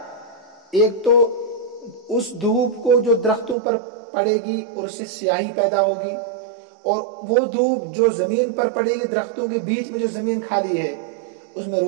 ایک تو اس دھوپ کو جو درختوں پر پڑے گی اور اس سے سیاہی پیدا ہوگی، اور وہ دھوپ جو زمین پر پڑے گی درختوں کے بیچ میں جو زمین خالی ہے اس میں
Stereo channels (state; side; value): drops out; left; at 3.6 s